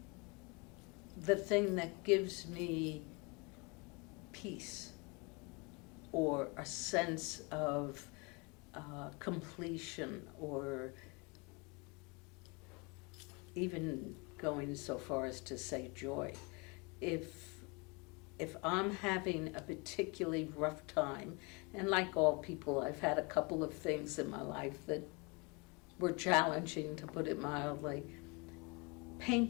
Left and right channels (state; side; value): quieter; right; 29.5 dB